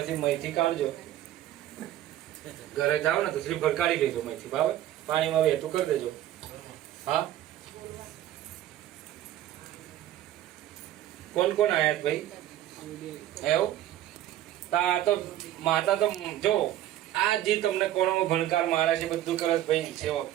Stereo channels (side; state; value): left; quieter; 13.0 dB